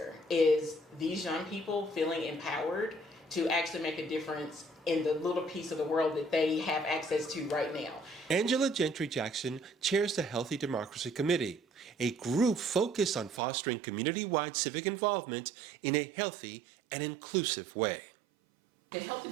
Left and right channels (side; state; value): left; drops out; at 13.4 s